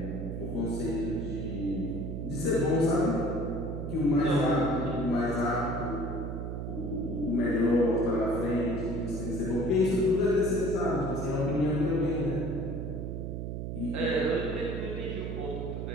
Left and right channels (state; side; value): noise; right; hum, 4 dB below the sound